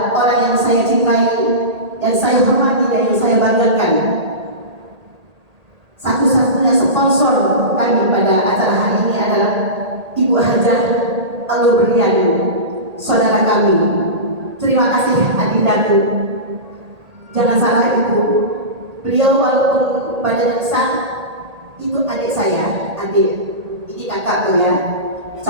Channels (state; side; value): late; left; 1.8 ms